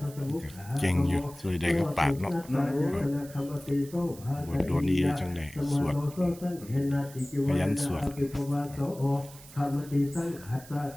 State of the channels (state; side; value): noise; right; hiss, 19 dB below the sound